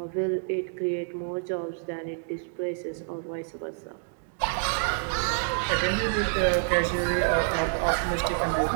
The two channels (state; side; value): silent; left; digital silence